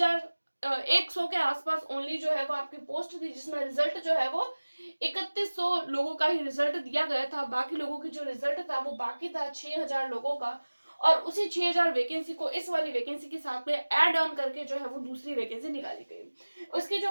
के आसपास ओनली जो है वो आपकी पोस्ट थी, जिसमें रिजल्ट जो है वो 3100 लोगों का ही रिजल्ट दिया गया था। बाकी लोगों की जो रिजल्ट था वो बाकी था 6,000 लोगों का, और उसी 6,000 वैकेंसी को इस वाली वैकेंसी के साथ में ऐड ऑन करके जो है वो दूसरी वैकेंसी निकाली गई। उसकी जो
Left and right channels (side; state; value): both; inverted; correlation -1.00